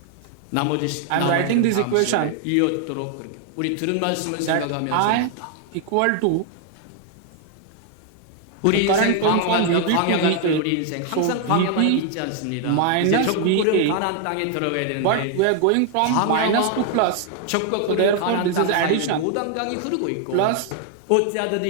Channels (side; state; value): both; different; correlation 0.00